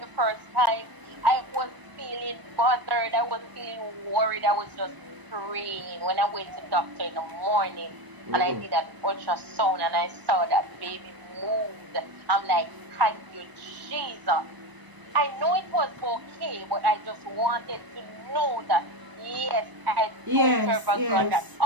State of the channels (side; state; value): left; late; 1.0 ms